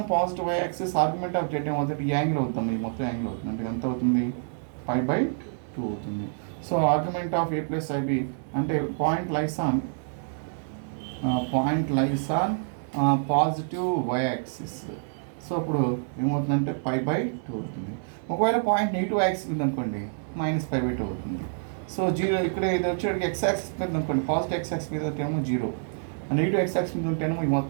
positive y axis, argument of z ఏమవుతుంది? ఈ యాంగిల్ అవుతుంది, ఈ మొత్తం యాంగిల్ అవుతుంది. అంటే ఎంత అవుతుంది? pi by 2 అవుతుంది. So argument of a plus ib అంటే point lies on positive y axis. So అప్పుడు ఏమవుతుందంటే pi by 2 అవుతుంది. ఒకవేళ పాయింట్ నెగిటివ్ యాక్సిస్ ఉంది అనుకోండి, -pi by 2 అవుతుంది. సో 0 ఇక్కడ ఇది వచ్చేటికి x యాక్సిస్ మీద అనుకోండి, పాజిటివ్ x యాక్సిస్ మీద ఏమో 0, నెగిటివ్ x యాక్సిస్ మీద ఉంటేనేమో ఈ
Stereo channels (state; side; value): silent; left; 60 dB below the other